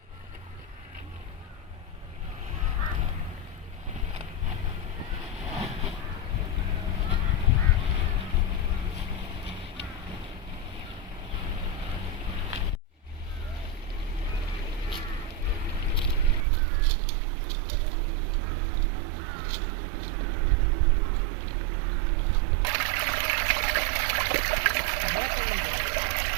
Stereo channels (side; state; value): left; drops out; at 16.4 s